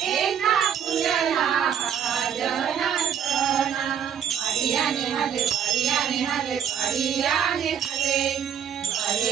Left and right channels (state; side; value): quieter; left; 8.3 dB